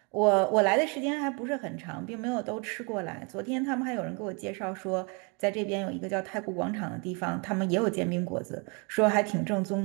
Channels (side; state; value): left; quieter; 32.3 dB